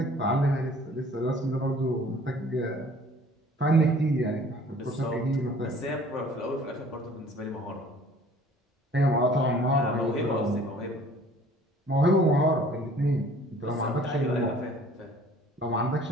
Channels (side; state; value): both; normal; correlation 0.52